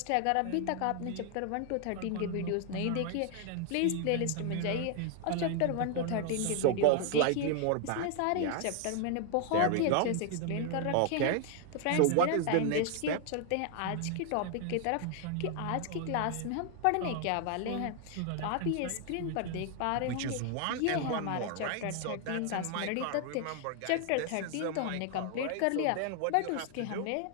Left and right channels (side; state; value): both; different; correlation 0.00